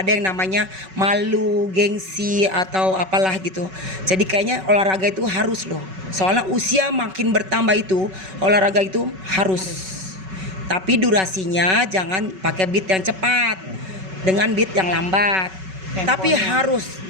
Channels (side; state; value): left; late; 5.3 ms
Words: ada yang namanya malu, gengsi atau apalah gitu. Jadi kayaknya olahraga itu harus loh. Soalnya usia makin bertambah itu olahraga itu harus. Tapi durasinya jangan pakai beat yang cepat, dengan beat yang lambat. Tapi harus